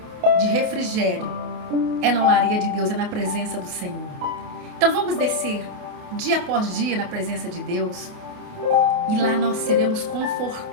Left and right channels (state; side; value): late; left; 28 ms